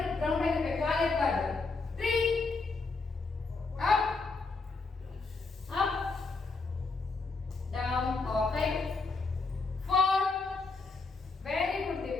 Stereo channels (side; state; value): right; quieter; 4.0 dB